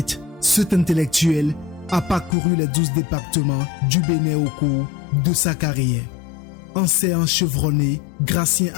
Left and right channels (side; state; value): right; drops out; at 2.4 s